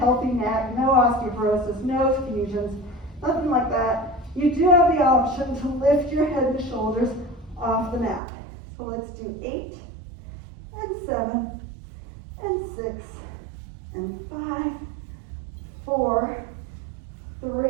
neck, no osteoporosis, no fusions, nothing like that, you do have the option to lift your head and shoulders off the mat. So let's do 8 and 7 and 6 and 5, 4,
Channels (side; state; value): left; drops out; at 8.2 s